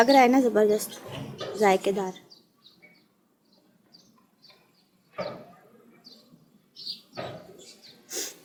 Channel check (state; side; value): identical; both; correlation 1.00